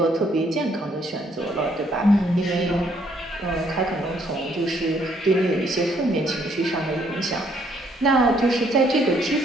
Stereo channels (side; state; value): both; normal; correlation 0.68